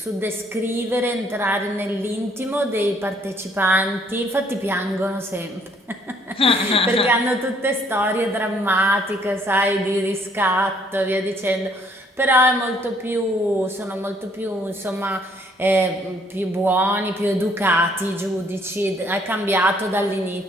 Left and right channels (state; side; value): normal; both; correlation 0.64